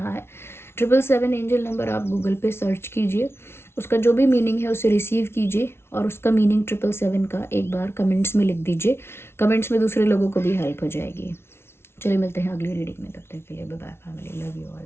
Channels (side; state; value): right; late; 0.12 ms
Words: है। 777 एंजल नंबर आप गूगल पे सर्च कीजिए, उसका जो भी मीनिंग है उसे रिसीव कीजिए, और उसका मीनिंग 777 का एक बार कमेंट्स में लिख दीजिए। कमेंट्स में दूसरे लोगों को भी हेल्प हो जाएगी। चलिए मिलते हैं अगली रीडिंग में, तब तक के लिए बाय बाय फैमिली, लव यू